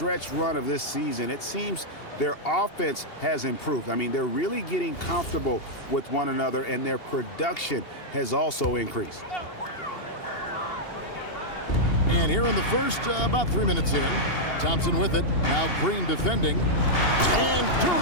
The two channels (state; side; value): late; right; 2.8 ms